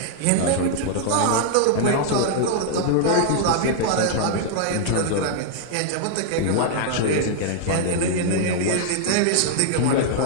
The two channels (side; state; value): both; different; correlation 0.00